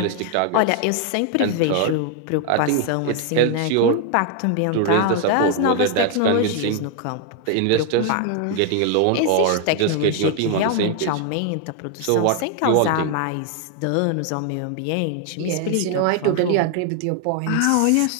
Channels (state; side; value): different; both; correlation 0.00